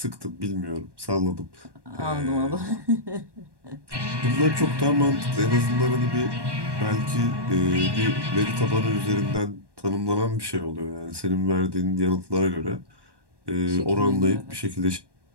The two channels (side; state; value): left; late; 1.1 ms